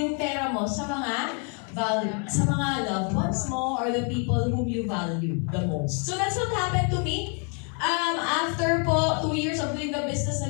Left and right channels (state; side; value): quieter; right; 39.2 dB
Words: pera mo sa mga loved ones mo or the people whom you value the most. So that's what happened to me. After po 2 years of doing the business,